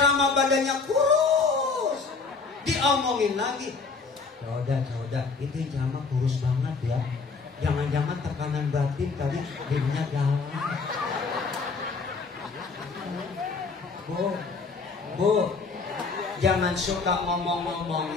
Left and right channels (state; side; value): quieter; right; 4.5 dB